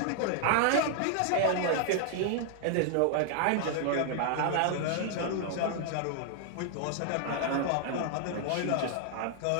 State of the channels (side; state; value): both; different; correlation 0.00